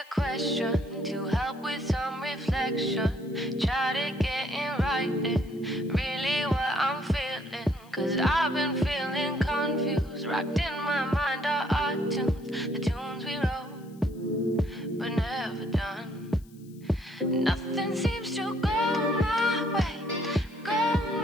question to help with some reflection? Try to get in writing, really what I'm feeling. Cause I've been feeling confused. Rocked in my mind are our tunes, the tunes we wrote, but never done. Nothing seems to go my way, go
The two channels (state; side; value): noise; left; hiss, 28 dB below the sound